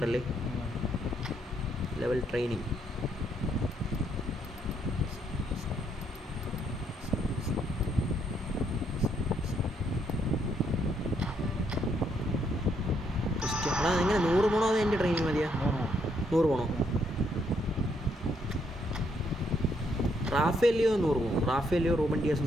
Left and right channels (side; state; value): both; normal; correlation 0.73